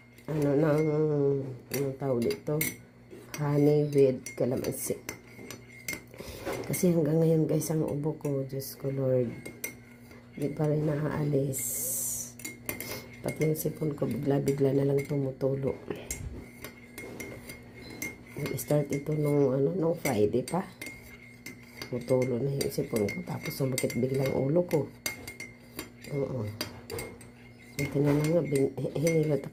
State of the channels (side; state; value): both; identical; correlation 1.00